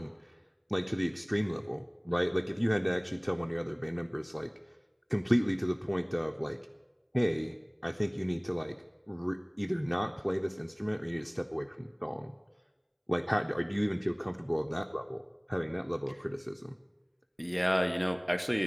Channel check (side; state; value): both; identical; correlation 1.00